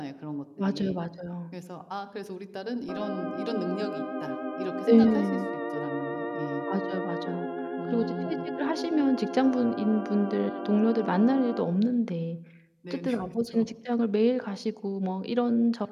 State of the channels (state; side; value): identical; both; correlation 1.00